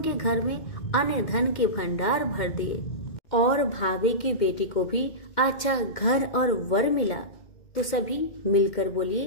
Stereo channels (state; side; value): late; right; 2.1 ms